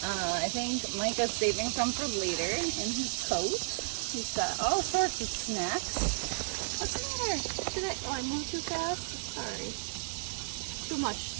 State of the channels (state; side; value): silent; left; 56 dB below the other